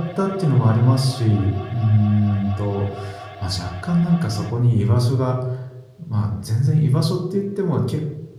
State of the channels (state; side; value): identical; both; correlation 1.00